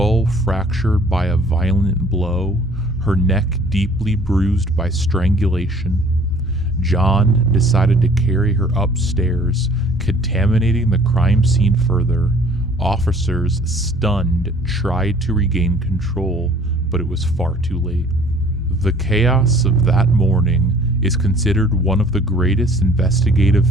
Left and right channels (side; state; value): both; normal; correlation 0.54